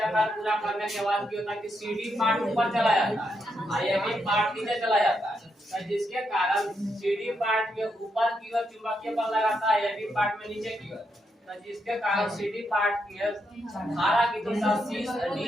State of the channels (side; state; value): both; normal; correlation 0.81